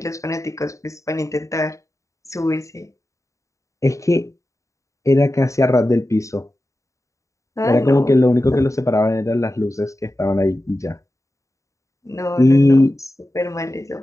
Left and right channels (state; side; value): late; right; 0.15 ms